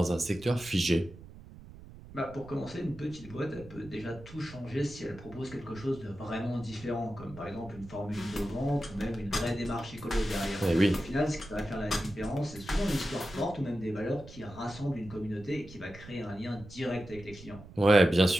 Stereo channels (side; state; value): right; noise; rumble, 17 dB below the sound